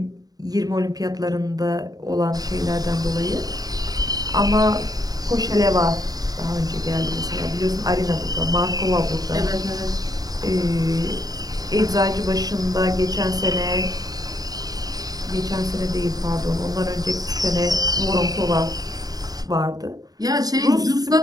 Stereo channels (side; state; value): left; late; 0.18 ms